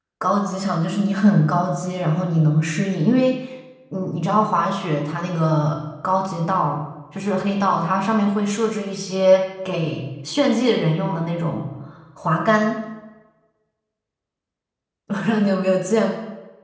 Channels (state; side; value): identical; both; correlation 1.00